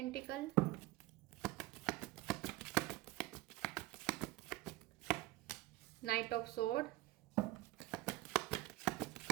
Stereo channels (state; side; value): quieter; left; 18.5 dB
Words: knight of sword,